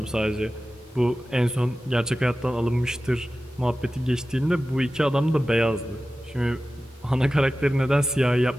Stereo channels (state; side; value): normal; both; correlation 0.95